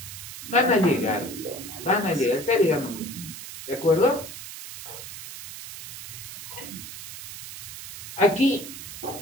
Van a llegar, está llegando mucho más. ¿De acuerdo? Aquí,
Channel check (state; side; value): noise; right; hiss, 11 dB below the sound